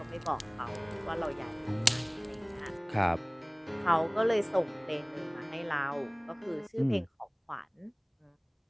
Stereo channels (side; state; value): both; identical; correlation 1.00